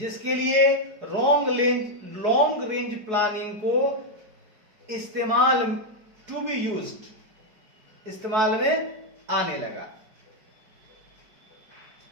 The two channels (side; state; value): left; late; 4.7 ms